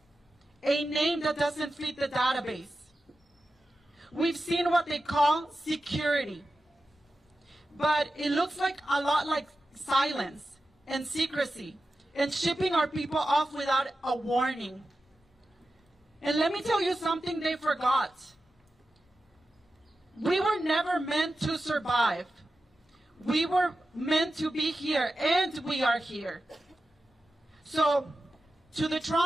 a name that doesn't fit the database. We've seen what they call security, but it looks like a lot like silence and secrecy and shipping our people off without a warning. And let me tell you something they forgot. We were never meant to survive. We were meant to be here, and we are here. So, to the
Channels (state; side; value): normal; both; correlation 0.92